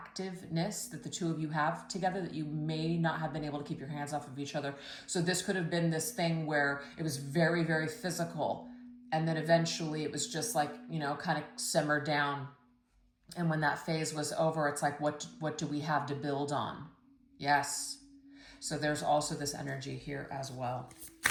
that the two of you have together that you may not have been able to keep your hands off of each other. So this could have been this thing where it was very, very physical. And then eventually it was just like, kind of simmered down. And when that phase was over, it's like, what do we have to build on? Yes. So there's also this energy here as well.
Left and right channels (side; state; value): both; identical; correlation 1.00